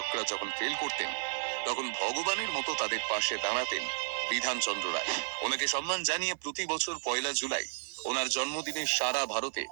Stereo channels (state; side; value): silent; left; 56 dB below the other